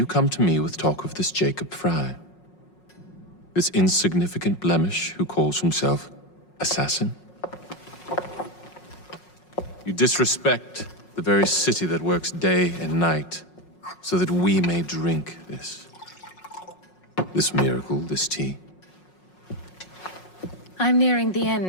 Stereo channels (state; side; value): late; right; 5.5 ms